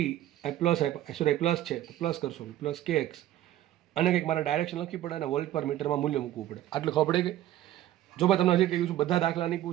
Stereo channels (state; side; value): quieter; left; 13.5 dB